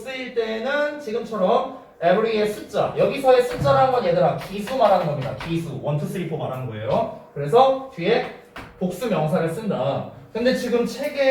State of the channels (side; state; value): both; identical; correlation 1.00